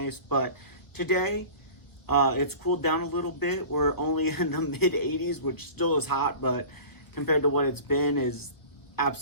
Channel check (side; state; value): right; late; 1.2 ms